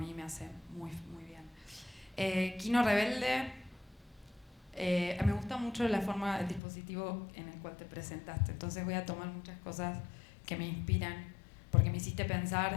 me hace muy, muy bien. Kino Rebelde, me gusta mucho la forma, el dispositivo en el cual te presentaste, entonces voy a tomar muchas cosas que me inspiran, porque me hiciste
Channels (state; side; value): drops out; right; at 6.6 s